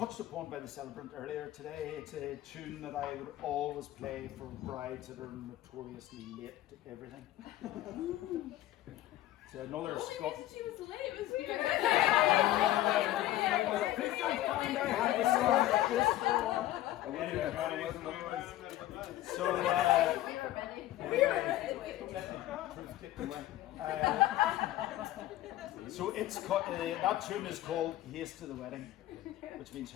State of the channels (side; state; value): right; quieter; 14.6 dB